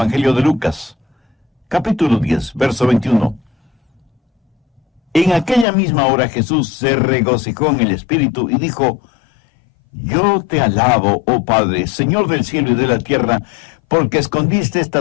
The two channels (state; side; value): drops out; right; at 5.7 s